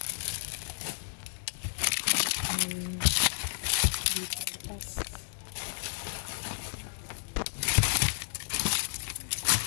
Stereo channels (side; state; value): right; silent; digital silence